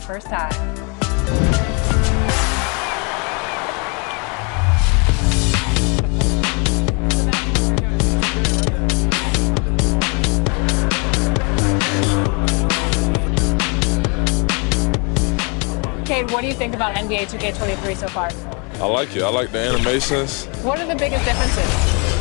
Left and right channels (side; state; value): right; quieter; 33.4 dB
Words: first time. Cade, what do you think about NBA 2K23 so far? I like it. I like the animations. What are the biggest differences?